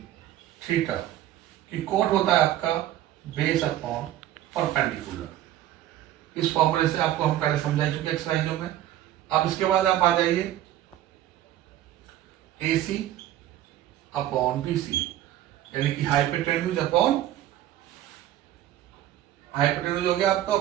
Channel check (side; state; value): left; quieter; 12.9 dB